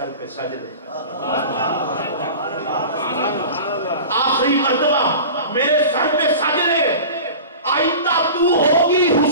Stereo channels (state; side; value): inverted; both; correlation -0.36